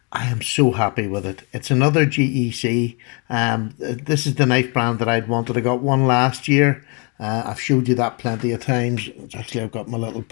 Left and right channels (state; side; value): quieter; right; 33.7 dB